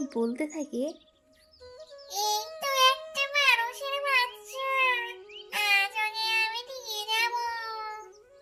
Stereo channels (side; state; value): both; identical; correlation 1.00